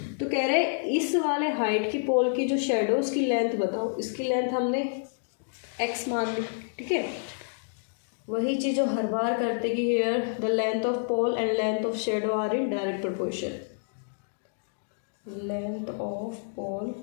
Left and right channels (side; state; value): right; silent; digital silence